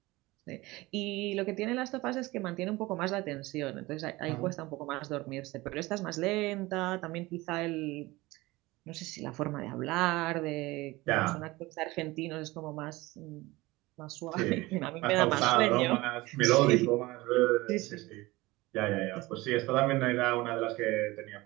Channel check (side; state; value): left; quieter; 20.6 dB